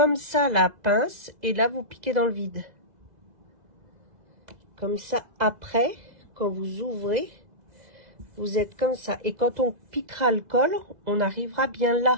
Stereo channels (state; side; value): late; left; 2.0 ms